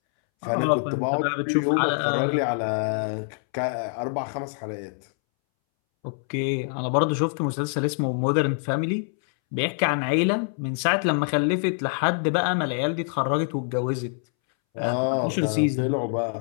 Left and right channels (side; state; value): right; silent; 62 dB below the other